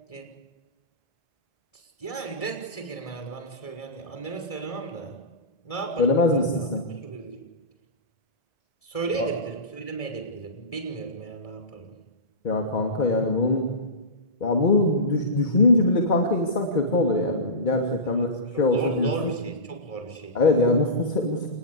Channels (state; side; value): late; right; 1.7 ms